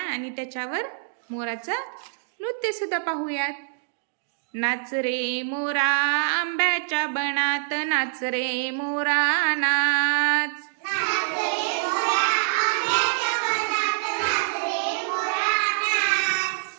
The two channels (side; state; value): left; silent; digital silence